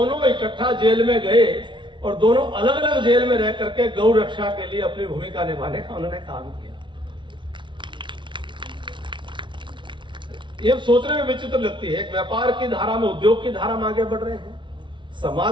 इकट्ठा जेल में गए और दोनों अलग अलग जेल में रह करके गौ रक्षा के लिए अपनी भूमिका निभाने का उन्होंने काम किया। ये सोचने में विचित्र लगती है, एक व्यापार की धारा में, उद्योग की धारा में आगे बढ़ रहे हैं,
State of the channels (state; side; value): late; left; 0.24 ms